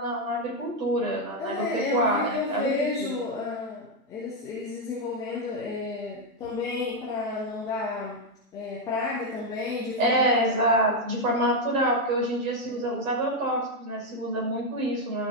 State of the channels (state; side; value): normal; both; correlation 0.03